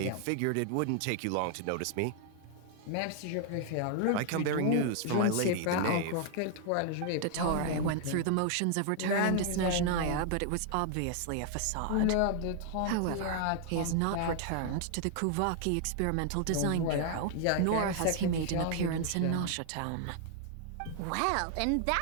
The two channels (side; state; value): both; different; correlation 0.00